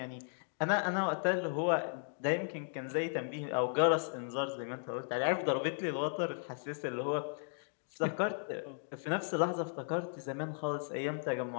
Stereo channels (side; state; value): right; silent; digital silence